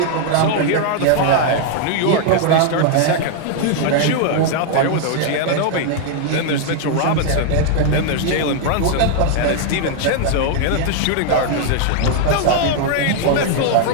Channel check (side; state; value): both; different; correlation 0.00